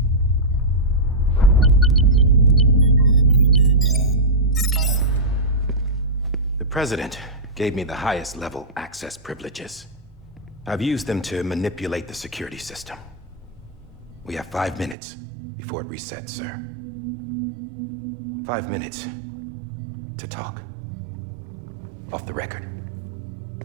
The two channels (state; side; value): drops out; left; at 15.0 s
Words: The President gave me the highest level access privileges. I've used them to manipulate the security system. We have 5 minutes before it resets, sir. 5 minutes to talk. Off the record.